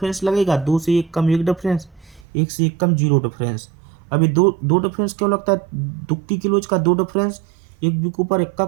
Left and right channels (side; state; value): left; drops out; at 2.2 s